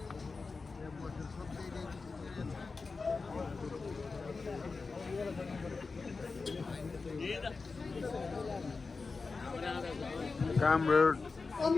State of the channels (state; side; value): quieter; right; 4.3 dB